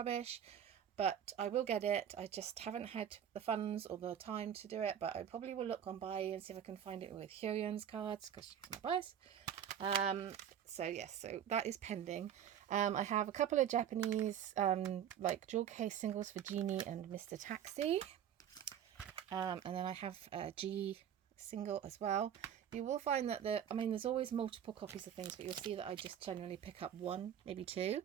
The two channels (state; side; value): quieter; left; 9.5 dB